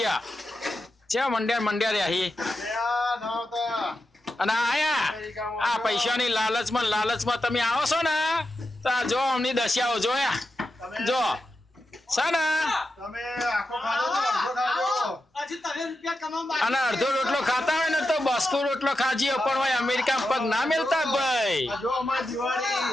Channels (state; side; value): normal; both; correlation 0.89